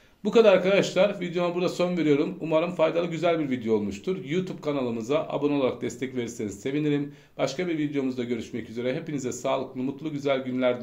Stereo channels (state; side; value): identical; both; correlation 1.00